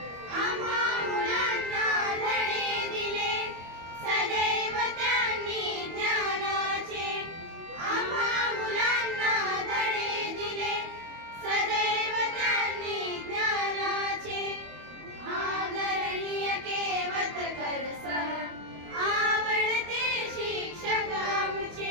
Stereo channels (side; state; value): left; late; 25 ms